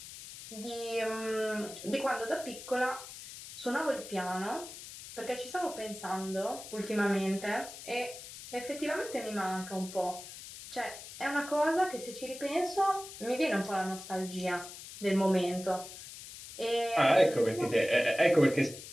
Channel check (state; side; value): noise; left; hiss, 13 dB below the sound